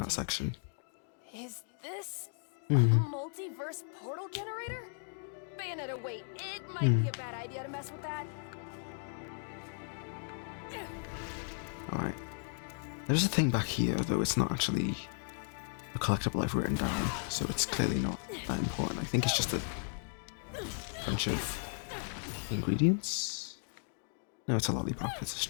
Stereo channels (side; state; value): right; silent; 54 dB below the other